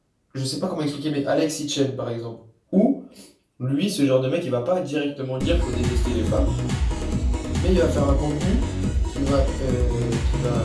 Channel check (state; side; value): identical; both; correlation 1.00